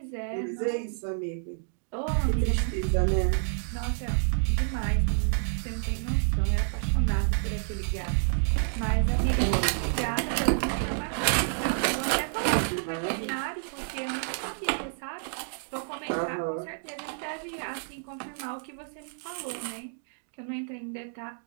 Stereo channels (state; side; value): silent; left; digital silence